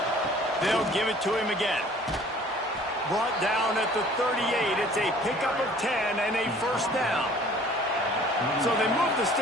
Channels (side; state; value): both; normal; correlation 0.52